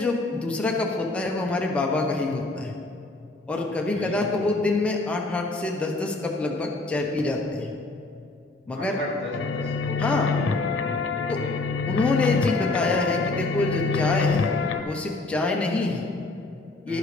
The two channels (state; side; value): quieter; right; 3.1 dB